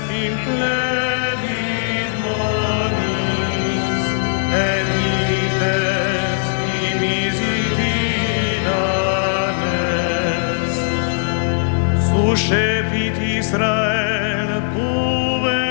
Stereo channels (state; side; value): silent; right; digital silence